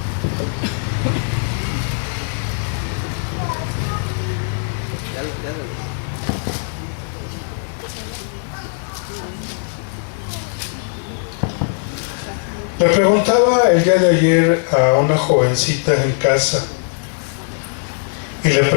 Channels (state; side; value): silent; right; digital silence